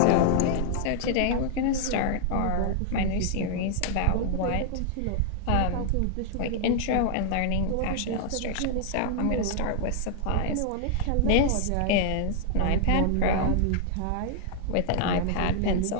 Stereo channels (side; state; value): both; different; correlation -0.01